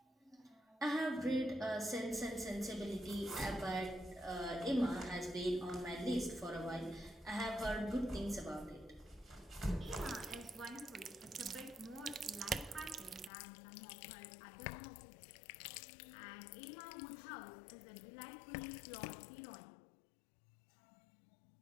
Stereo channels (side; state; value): right; drops out; at 13.3 s